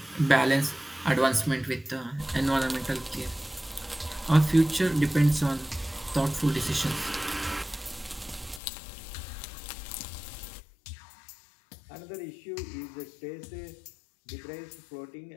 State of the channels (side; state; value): right; drops out; at 8.6 s